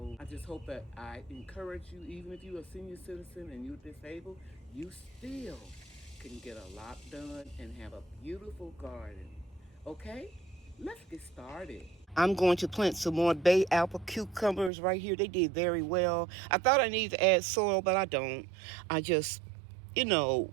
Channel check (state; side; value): drops out; left; at 14.7 s